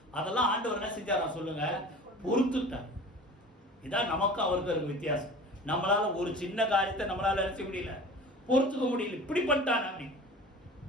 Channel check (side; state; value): both; normal; correlation 0.40